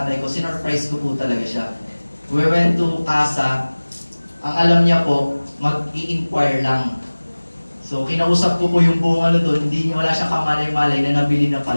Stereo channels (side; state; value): both; inverted; correlation -1.00